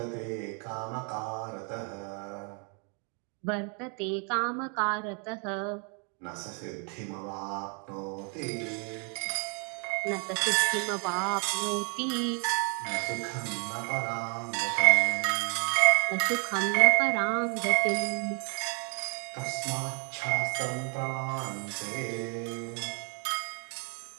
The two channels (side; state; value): left; quieter; 38.6 dB